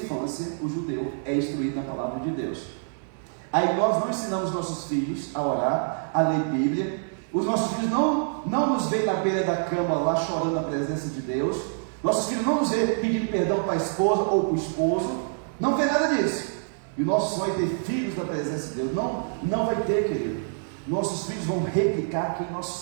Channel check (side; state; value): left; silent; 61 dB below the other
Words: o judeu é instruído na palavra de Deus. Aí nós não ensinamos nossos filhos a orar, a ler Bíblia. Os nossos filhos não nos veem na beira da cama lá chorando na presença de Deus. Nossos filhos não nos veem pedindo perdão para a esposa ou para o esposo. Não tem nada disso. E o nosso sonho é ter filhos na presença de Deus. Não vai ter, querido. Nossos filhos vão replicar quem nós